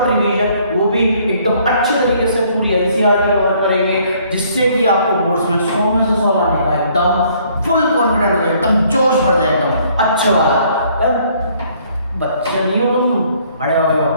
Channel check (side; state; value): both; inverted; correlation -0.63